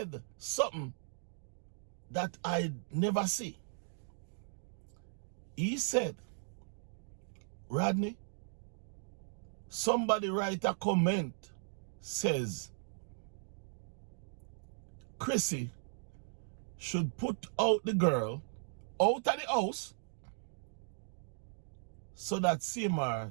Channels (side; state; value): left; silent; digital silence